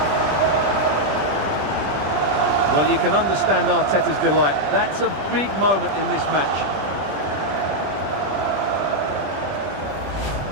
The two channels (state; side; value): late; left; 20 ms